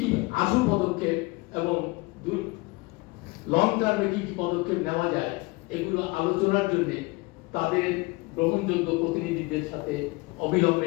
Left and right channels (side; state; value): right; quieter; 24.5 dB